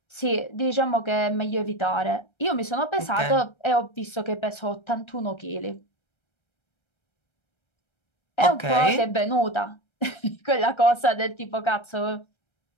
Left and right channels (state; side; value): late; right; 1.3 ms